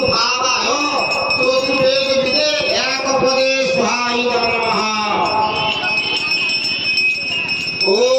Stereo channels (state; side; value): identical; both; correlation 1.00